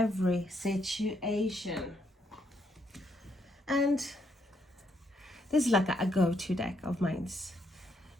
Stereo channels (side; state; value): both; normal; correlation 0.74